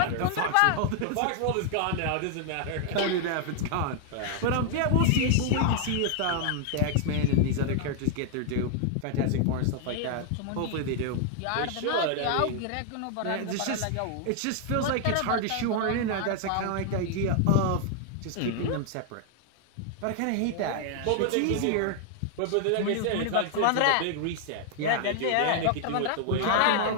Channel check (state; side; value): different; both; correlation 0.00